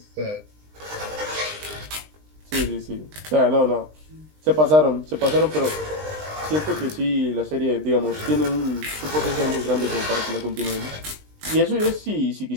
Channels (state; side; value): late; left; 20 ms